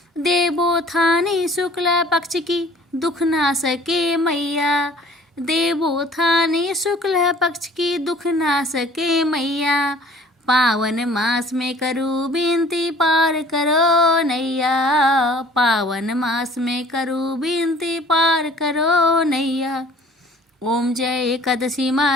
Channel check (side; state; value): both; normal; correlation 0.51